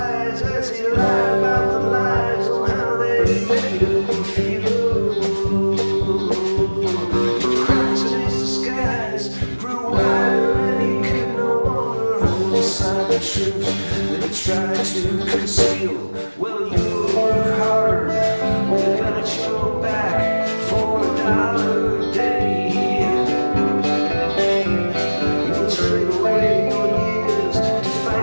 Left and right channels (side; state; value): both; inverted; correlation -1.00